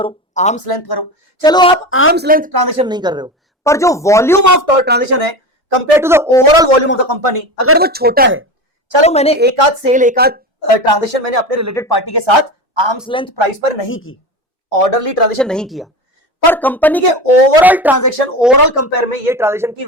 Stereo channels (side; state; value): both; normal; correlation 0.26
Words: आर्म्स लेंथ करो। चलो आप आर्म्स लेंथ ट्रांजेक्शन नहीं कर रहे हो, पर जो वॉल्यूम ऑफ ट्रांजेक्शन है compare to the overall volume of the company, अगर वो छोटा है, चलो मैंने एक आध सेल, एक आध ट्रांजेक्शन मैंने अपने रिलेटेड पार्टी के साथ आर्म्स लेंथ प्राइस पर नहीं की, ऑर्डरली ट्रांजेक्शन नहीं किया, पर कंपनी के ओवरऑल ट्रांजेक्शन, ओवरऑल कंपेयर में ये ट्रांजेक्शन की